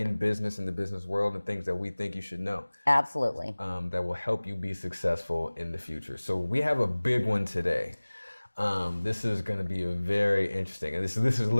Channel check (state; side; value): inverted; both; correlation -1.00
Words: business, in the business world, and things that we think you should know. Absolutely. That will help you be successful in the future. So we have a big one today. This is going to be a very interesting, and this is